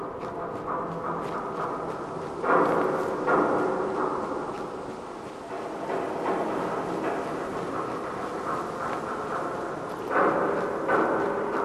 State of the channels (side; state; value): both; identical; correlation 1.00